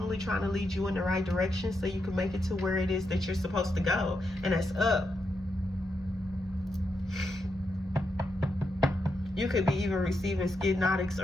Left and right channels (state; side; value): normal; both; correlation 0.83